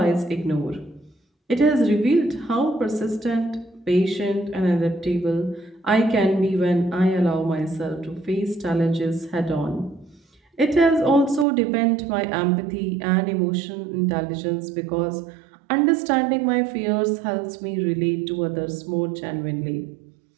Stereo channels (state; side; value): drops out; left; at 11.5 s